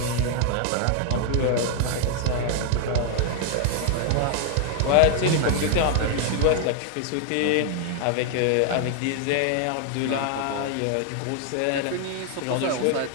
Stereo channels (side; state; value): both; different; correlation 0.00